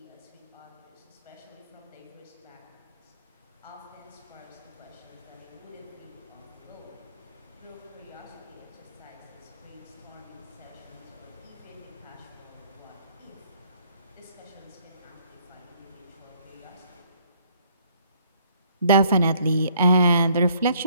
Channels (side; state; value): both; inverted; correlation -0.64